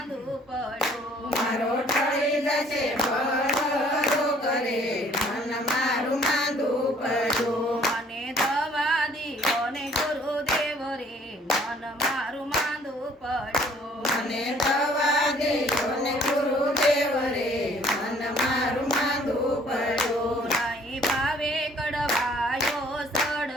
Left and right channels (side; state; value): both; normal; correlation 0.58